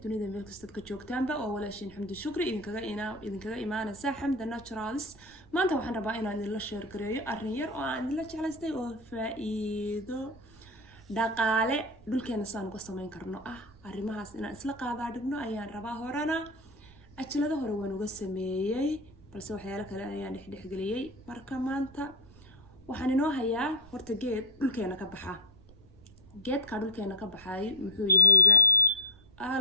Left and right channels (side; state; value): right; noise; rumble, 25 dB below the sound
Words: dunida meel kasta ka joogtaanba oo walaashin xamdi shukri idinkaga imaanaysa xamda naturals. maanta waxaan rabaa inaan idin la share gareeyo arrin yar oo aan idin la jeclaystay oo faa'iido dhaqaale dhulkeena saan uga sameyn karno arrimahaas inaan isla qaadaa dhigno ayaan rabaa. horena ajlada hore waan uga sameeyay balse waxyaalo kale ayaan dhexgeliyay. marka maanta waxaan inoo hayaa horta geed dhulkeena ka baxa. geedka dhulkeena ka baxay muxuu yahayba